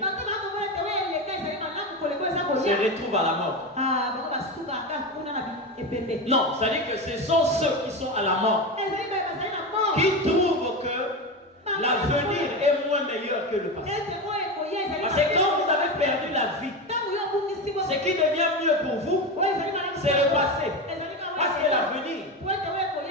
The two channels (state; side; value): normal; both; correlation 0.19